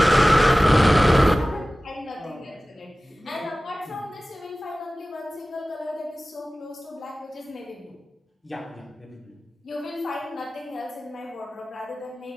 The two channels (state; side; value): normal; both; correlation 0.97